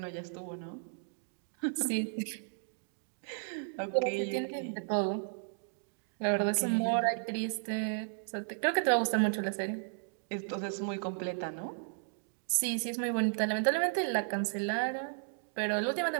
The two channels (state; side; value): silent; left; digital silence